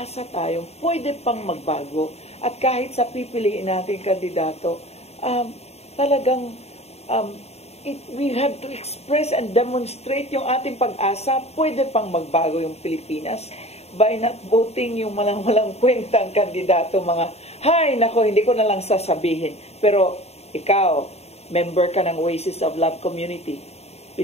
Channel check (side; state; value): right; late; 0.30 ms